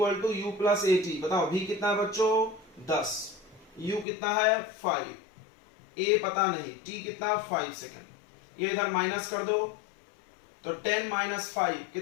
to U plus AT। बताओ B कितना है बच्चों 10, U कितना है 5, A पता नहीं, T कितना 5 सेकेंड। ये इधर माइनस कर दो, तो 10 माइनस 5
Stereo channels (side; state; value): right; drops out; at 4.0 s